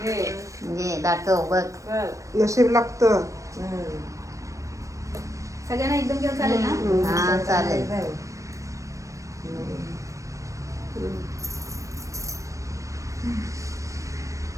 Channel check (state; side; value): late; left; 0.15 ms